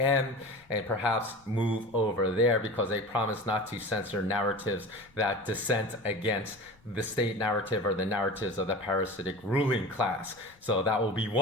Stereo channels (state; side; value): noise; left; rumble, 30 dB below the sound